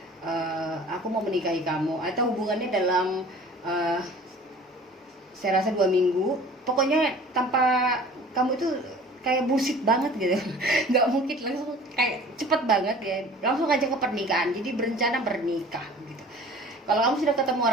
aku mau menikahi kamu, atau hubungannya dalam saya rasa 2 minggu, pokoknya tanpa kamu itu kayak bullshit banget gitu. Nggak mungkin langsung kayak cepet banget ya, langsung aja ke pernikahan, jadi berencana bernikah gitu. Kalau kamu sudah ketemu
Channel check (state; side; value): normal; both; correlation 0.46